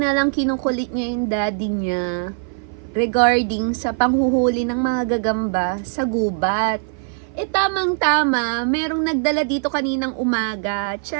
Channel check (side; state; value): left; silent; 55 dB below the other